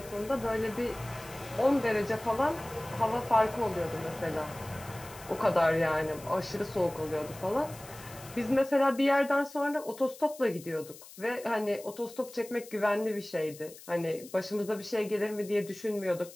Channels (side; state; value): left; noise; hiss, 18 dB below the sound